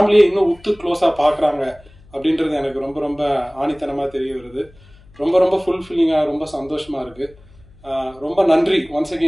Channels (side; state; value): left; noise; hum, 26 dB below the sound